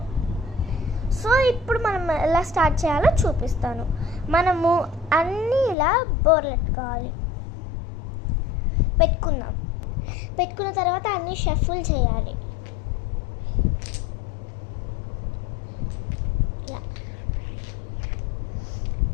సో ఇప్పుడు మనం ఎలా స్టార్ట్ చేయాలో చూపిస్తాను. మనము అన్నీ ఇలా బోర్లెట్టుకోవాలి. పెట్టుకున్న తర్వాత అన్నీ షఫుల్ చేయాలి. ఇలా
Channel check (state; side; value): drops out; right; at 5.8 s